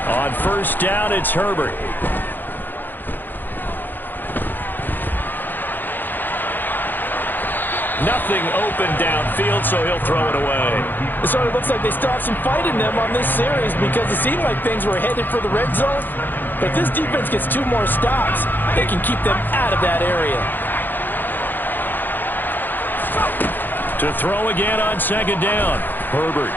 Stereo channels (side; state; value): right; late; 0.091 ms